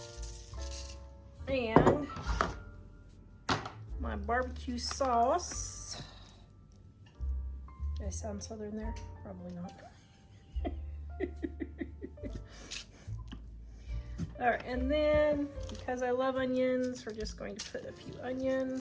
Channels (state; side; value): identical; both; correlation 1.00